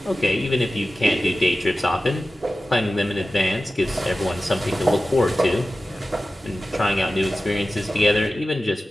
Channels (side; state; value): both; normal; correlation 0.95